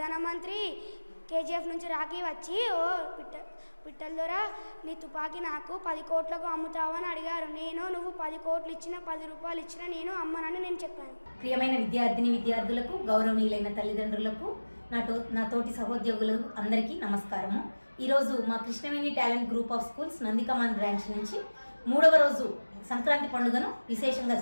కేజీఎఫ్ నుంచి రాఖీ వచ్చి ఓ పిట్టల ద్వారా నీ తుపాకీ నాకు 10 కోట్లకు అమ్ముతావని అడిగారు. నువ్వు 10 కోట్లు ఇచ్చినా 10 రూపాయలు ఇచ్చినా నేను అమ్మనని నేను చెప్పాను. ప్రియమైన విద్యార్థులకు, గౌరవనీయులైన తల్లిదండ్రులకు, నా తోటి సహోద్యోగులు అందరికీ నమస్కారము. ఈరోజు మా Krishnaveni talent group of schools Nandikaman branch నుంచి 3వ రోజు సంక్రాంతి పండుగను విశేషంగా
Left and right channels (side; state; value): both; inverted; correlation -1.00